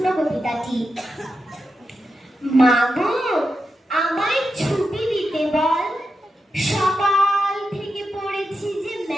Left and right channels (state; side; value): normal; both; correlation 0.88